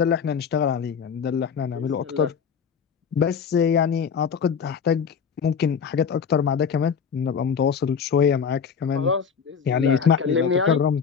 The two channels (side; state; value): right; quieter; 6.7 dB